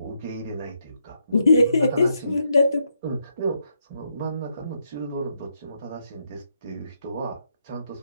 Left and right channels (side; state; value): both; inverted; correlation -0.79